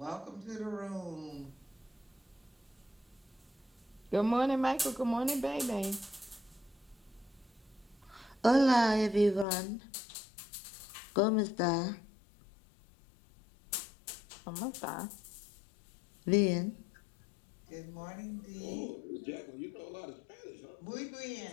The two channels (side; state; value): right; drops out; at 9.5 s